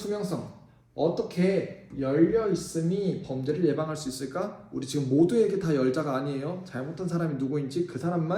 어떻게 열려 있음이 범죄를 예방할 수 있을까? 우리 지금 모두에게 다 열자가 아니에요. 잘못한 사람이 누구인지 그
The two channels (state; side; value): identical; both; correlation 1.00